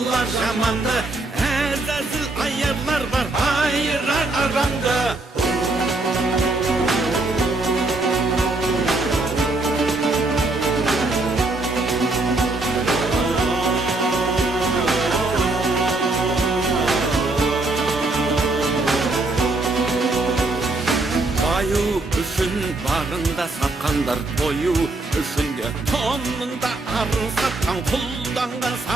жаманды, әзәзіл аярлар бар айырар арамды. Баю үшін барында сатқандар, тою үшін де тонында арын сатқан, құлданған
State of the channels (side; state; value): left; quieter; 3.1 dB